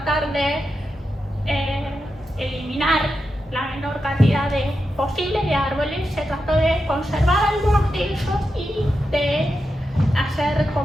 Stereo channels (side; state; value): both; normal; correlation 0.88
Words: de eliminar la menor cantidad posible de árboles, se trató de conservar algunos de ellos y de hacer